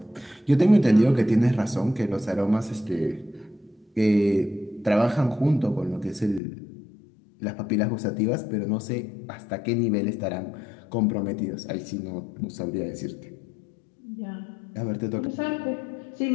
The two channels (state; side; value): drops out; right; at 6.4 s